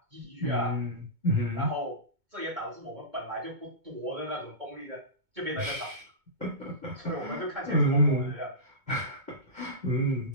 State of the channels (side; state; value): left; late; 2.2 ms